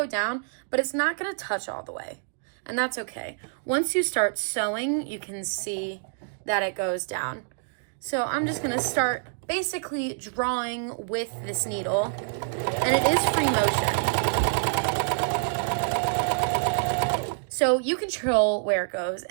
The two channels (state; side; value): silent; left; digital silence